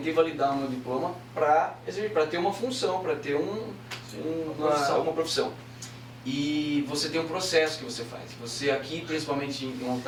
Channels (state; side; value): identical; both; correlation 1.00